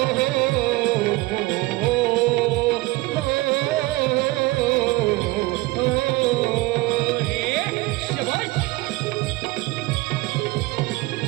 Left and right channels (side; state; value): left; quieter; 21.0 dB